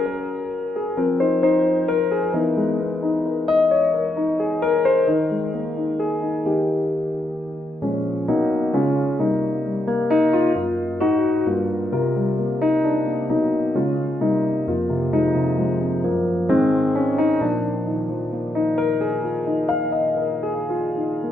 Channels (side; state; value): both; normal; correlation 0.82